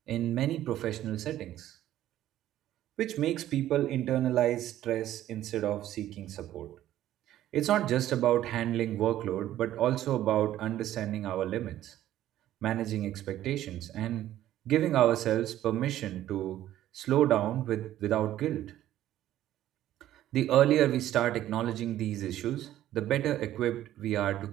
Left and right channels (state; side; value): quieter; left; 13.0 dB